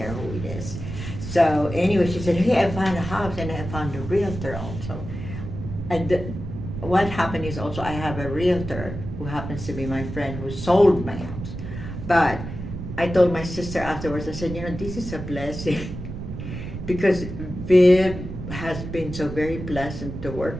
who it is. So anyway, she said, hey, I found a house and I found a realtor also. And what happened is also I have a realtor who happens to be my friend who sold my house. But I told my sister afterwards, I said, this is a blessing because Viv has been so very pleasant to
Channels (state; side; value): noise; right; rumble, 8 dB below the sound